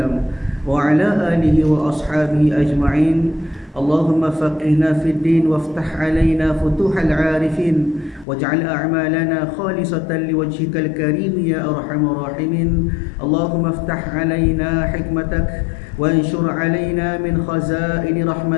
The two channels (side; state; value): right; drops out; at 8.2 s